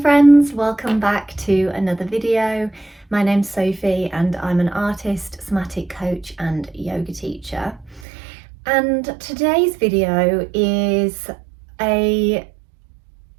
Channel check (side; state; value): left; drops out; at 8.1 s